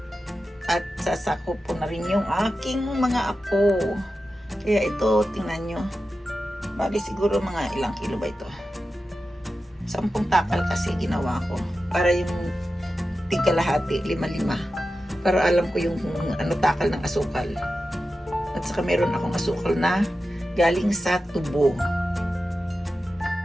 At sasako po na rin yung aking mga apo. Kaya ito, tingnan nyo. Bali siguro mga ilang kilo ba ito? 10 takal kasi ginawa ko. Para yung tigkalahati, 5-5. Para alam ko yung takal ng asukal. At saka meron akong asukal na galing sa tubo.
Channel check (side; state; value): both; normal; correlation 0.92